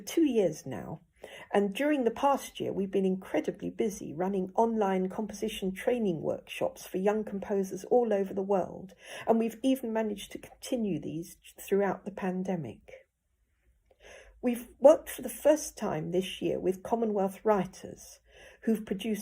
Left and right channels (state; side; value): identical; both; correlation 1.00